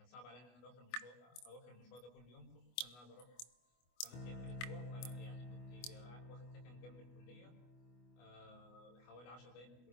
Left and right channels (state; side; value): late; right; 24 ms